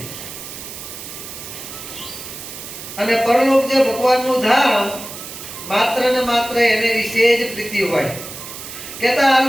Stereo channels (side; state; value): right; noise; hiss, 11 dB below the sound